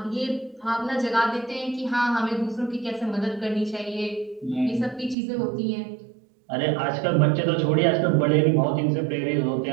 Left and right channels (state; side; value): drops out; left; at 5.2 s